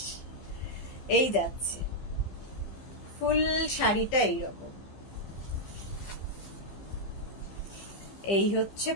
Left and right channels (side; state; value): right; late; 15 ms